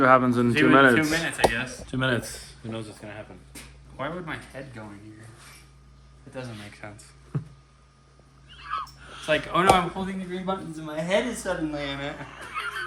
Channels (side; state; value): both; identical; correlation 1.00